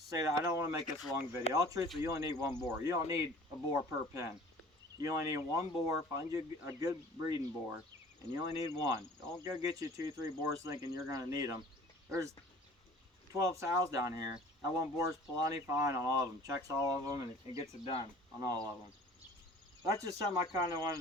that I don't want to make this a long video. All truth, you only need one boar. You don't need a boar per pen. You only need one boar. Find you a good breeding boar, and you only need one. Don't go get you 2-3 boars thinking you're going to need them. There's 12 sows down here. That one boar's plenty fine on all of them. Checks all of them and it gets it done on all of them. That's just something I kind of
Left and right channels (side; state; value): both; normal; correlation 0.47